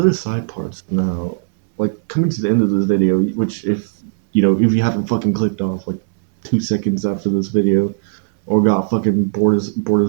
side parts now, like coming to the end of this video, which if you haven't fucking clicked off like 2 seconds after this video, or got fucking bored as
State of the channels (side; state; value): left; silent; 66 dB below the other